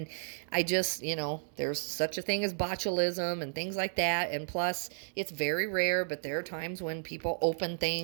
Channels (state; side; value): silent; left; 56 dB below the other